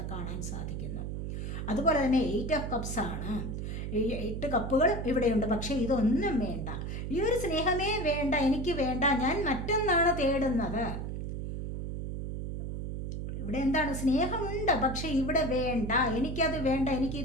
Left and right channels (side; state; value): right; noise; hum, 4 dB below the sound